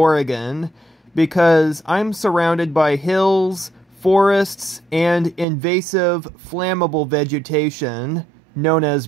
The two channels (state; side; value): drops out; left; at 5.5 s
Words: because I'm surrounded by hills, forests, and invasive flammable vegetation known as